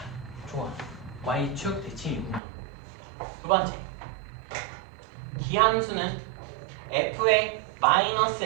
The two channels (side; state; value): left; drops out; at 2.4 s